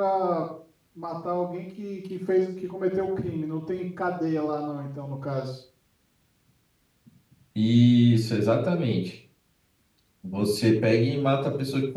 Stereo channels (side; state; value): both; identical; correlation 1.00